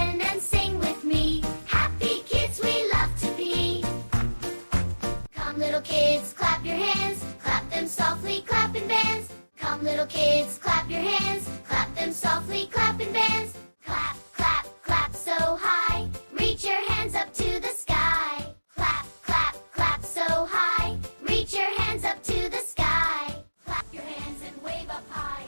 and sing with me. Happy kids we love to be. Come little kids, clap your hands. Clap them softly, clap and dance. Come little kids, clap your hands. Clap them softly, clap and dance. Clap, clap, clap so high. Reach your hands up to the sky. Clap, clap, clap so high. Reach your hands up to the sky. Clap your hands and wave up high.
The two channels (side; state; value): both; inverted; correlation -1.00